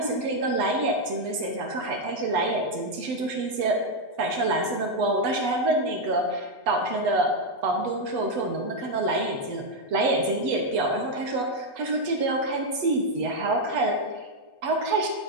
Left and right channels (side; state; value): left; late; 8.1 ms